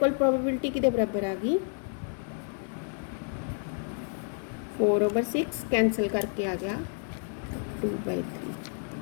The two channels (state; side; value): silent; right; 56 dB below the other